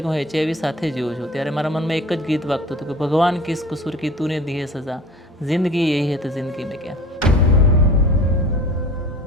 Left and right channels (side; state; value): both; normal; correlation 0.43